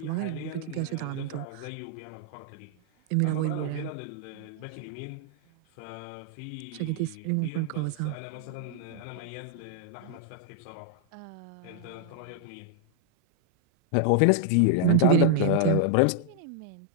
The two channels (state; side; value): different; both; correlation -0.01